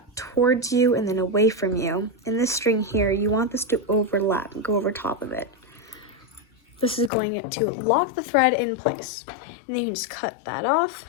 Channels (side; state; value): right; drops out; at 7.1 s